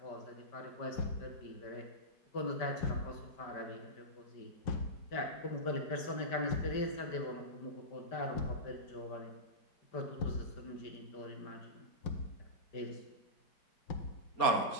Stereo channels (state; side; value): late; right; 5.1 ms